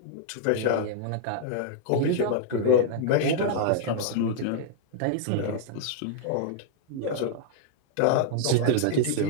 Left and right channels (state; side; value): different; both; correlation -0.01